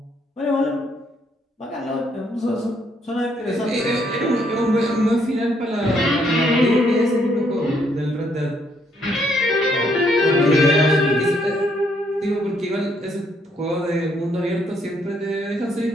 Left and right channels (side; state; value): both; normal; correlation 0.71